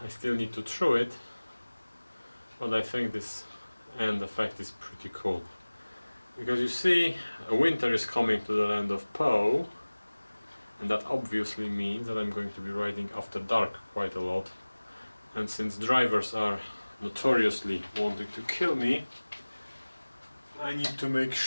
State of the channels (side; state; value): both; inverted; correlation -1.00